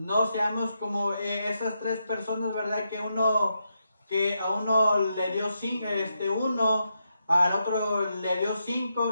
seamos como esas tres personas, ¿verdad?, que a uno le dio 5, uno, al otro le dio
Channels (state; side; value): inverted; both; correlation -0.83